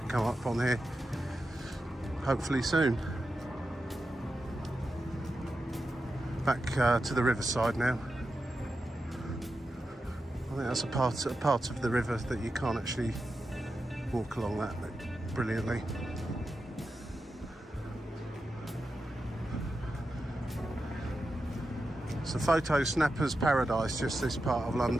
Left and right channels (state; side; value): normal; both; correlation 0.90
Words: come up on here, hopefully soon. Back to the riverside now. I think that's a part of the river that you can't actually walk along that brilliantly. It's a photo snapper's paradise, just this part of